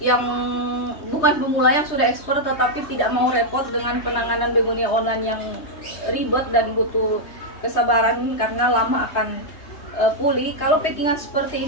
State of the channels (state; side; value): late; right; 3.2 ms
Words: yang bukan pemula yang sudah expert tetapi tidak mau repot dengan penanganan begonia online yang ribet dan butuh kesabaran karena lama akan pulih. Kalau packingan seperti